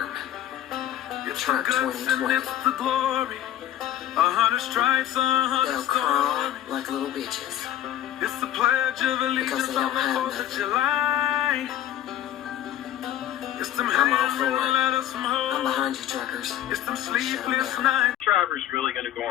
Truck 2020. They'll crawl like little bitches because they don't have nothing. I'm all for it. I'm behind you, truckers. Drivers really going to go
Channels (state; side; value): quieter; right; 12.0 dB